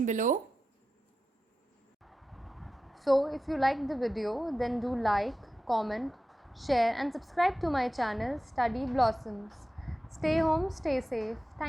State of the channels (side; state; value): both; normal; correlation 0.93